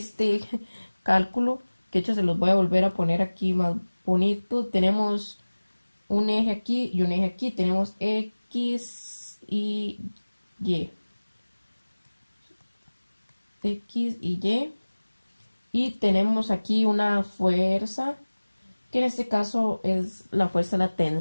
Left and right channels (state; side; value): inverted; both; correlation -1.00